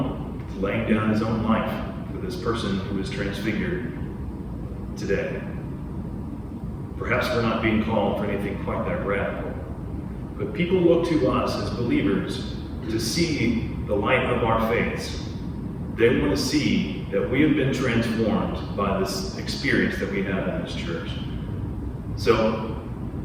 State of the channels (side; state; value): both; identical; correlation 1.00